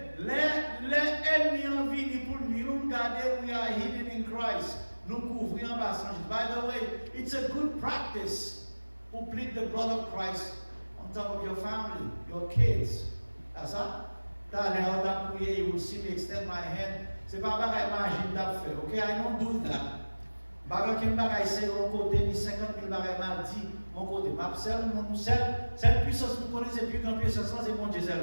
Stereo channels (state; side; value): inverted; both; correlation -1.00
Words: les ennemis ont venu pour nous garder, we are hidden in Christ. Nous couvrir en bas. By the way, it's a good practice to plead the blood of Christ on top of your family, your kids. That's ça? T'as l'air d'appuyer, you will see me extend my hand. C'est pas pareil, imagine d'ap faire. Okay, I don't do that. Bagan qui m'bagaille c'est mon côté, ni 50 000 bagailles mal dit mon côté. Ma seule puissance nous connaît, c'est plus grande puissance, c'est mon Dieu